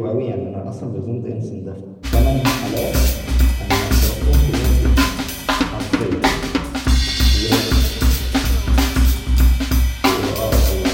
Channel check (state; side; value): identical; both; correlation 1.00